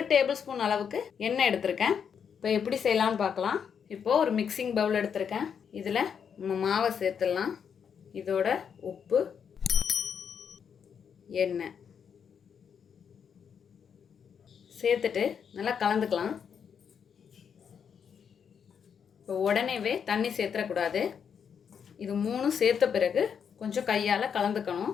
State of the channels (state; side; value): quieter; right; 7.3 dB